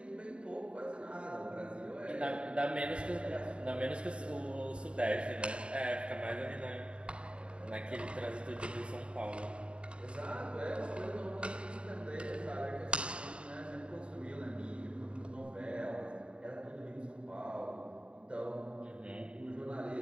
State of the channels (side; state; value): left; late; 0.056 ms